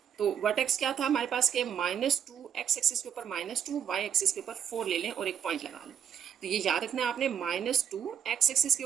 तो वर्टेक्स क्या था हमारे पास के -2 x एक्सिस के ऊपर -2, y एक्सिस के ऊपर 4 ले लें और एक पॉइंट लगा लें। तो ये याद रखना है आपने, -2 x एक्सिस के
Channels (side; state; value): left; quieter; 8.5 dB